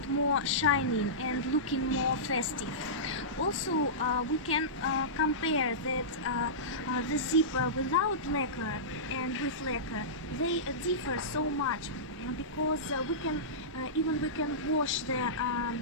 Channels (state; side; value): normal; both; correlation -0.17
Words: more shining and looking more festive. Also, we can compare that the zipper without lacquer and with lacquer, they differ so much because we can wash the